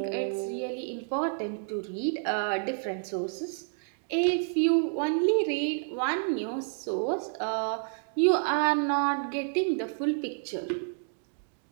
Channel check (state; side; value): silent; left; digital silence